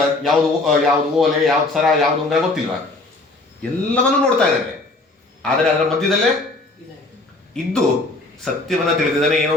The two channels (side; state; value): right; quieter; 3.1 dB